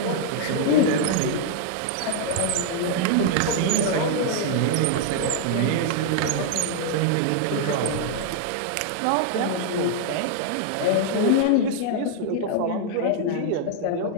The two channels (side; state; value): both; different; correlation -0.01